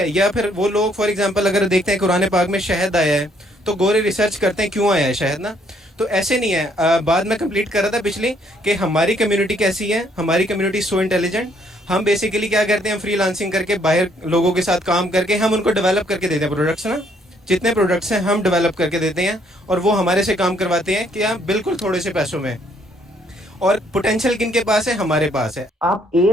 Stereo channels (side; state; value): both; normal; correlation 0.67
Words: یا پھر وہ لوگ فار ایگزامپل اگر دیکھتے ہیں قرآن پاک میں شہد آیا ہے تو گورے ریسرچ کرتے ہیں کیوں آیا ہے شہد نا. تو ایسے نہیں ہے. بعد میں کمپلیٹ کر رہا تھا پچھلی کہ ہماری کمیونٹی کیسی ہے. ہماری کمیونٹی سو انٹیلیجنٹ. ہم بیسیکلی کیا کرتے ہیں، فری لانسنگ کر کے باہر لوگوں کے ساتھ کام کر کے ہم ان کو ڈیولپ کر کے دیتے ہیں پروڈکٹس نا. جتنے پروڈکٹس ہیں ہم ڈیولپ کر کے دیتے ہیں اور وہ ہمارے سے کام کرواتے ہیں کہ بالکل تھوڑے سے پیسوں میں. اور پوٹینشیل کن کے پاس ہے؟ ہمارے پاس ہے. آپ